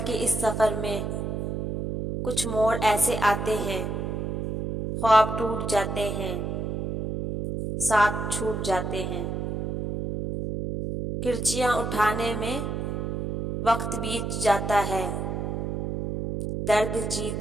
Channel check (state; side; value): noise; right; hum, 3 dB below the sound